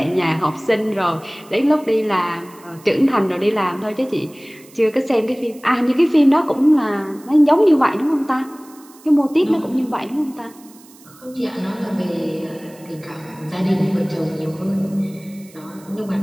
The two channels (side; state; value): right; noise; hiss, 25 dB below the sound